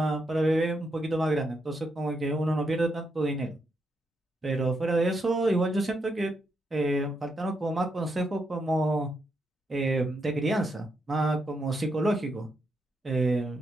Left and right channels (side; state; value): both; normal; correlation 0.81